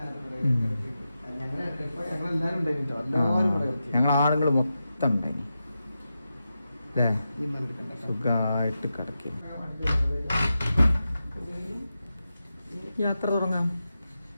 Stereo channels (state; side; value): inverted; both; correlation -0.89